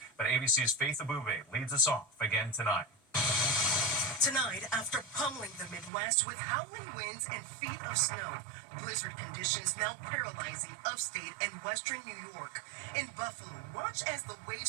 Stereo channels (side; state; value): left; drops out; at 5.9 s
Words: but ABC's Faith Abube leads us off again tonight. Tonight, after pummeling the Midwest with howling winds and feet of snow, blizzard conditions now paralyzing upstate and western New York. In Buffalo, watch as the